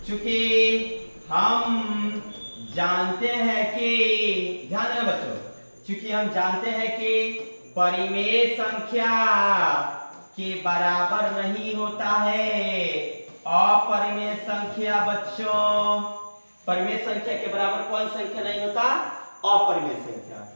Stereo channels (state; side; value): inverted; both; correlation -1.00